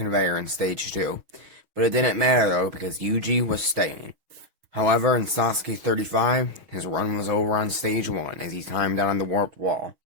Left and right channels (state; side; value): late; left; 6.3 ms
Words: in Stage 2. But it didn't matter though, because Yuji was staying. However, in Sasuke 35, his run was over on Stage 1 as he timed out on the warped wall.